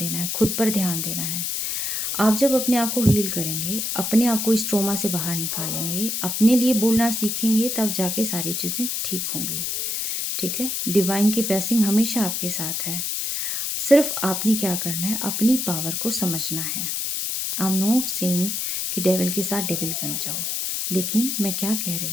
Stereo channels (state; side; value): noise; left; hiss, 1 dB below the sound